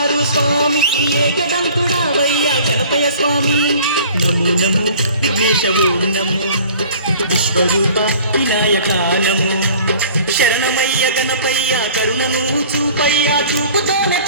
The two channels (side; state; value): both; inverted; correlation -0.48